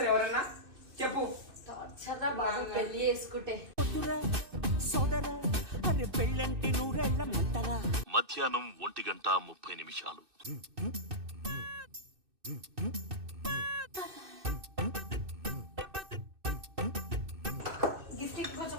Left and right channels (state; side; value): late; left; 2.6 ms